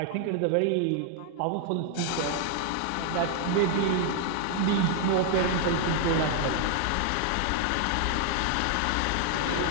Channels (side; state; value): both; different; correlation 0.00